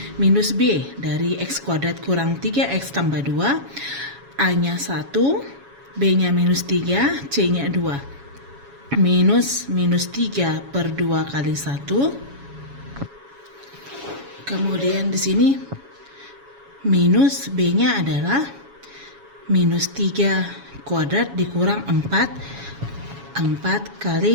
minus B dari X kuadrat kurang 3X tambah 2, A-nya 1, B-nya minus 3, C-nya 2. Minus 3 per 2 kali 1. Kemudian di sini minus B-nya adalah minus 3 kuadrat dikurang 4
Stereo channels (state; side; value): late; left; 7.2 ms